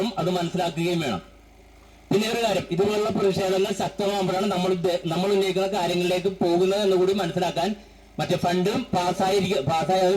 അത് മനസ്സിലാക്കുകയും വേണം. പിന്നെ ഒരു കാര്യം, ഇതുപോലുള്ള പ്രതിഷേധങ്ങൾ ശക്തമാകുമ്പോഴാണ് നമ്മൾ ഉന്നയിക്കുന്ന കാര്യങ്ങളിലേക്ക് പോകുന്നത് എന്ന് കൂടി മനസ്സിലാക്കാൻ മറ്റേ ഫണ്ടും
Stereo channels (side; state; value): both; identical; correlation 1.00